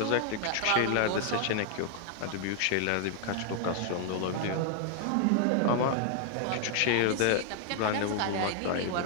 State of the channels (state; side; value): different; both; correlation 0.00